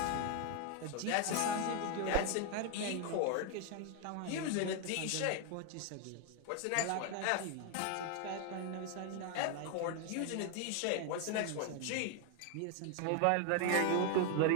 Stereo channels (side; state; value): both; different; correlation 0.01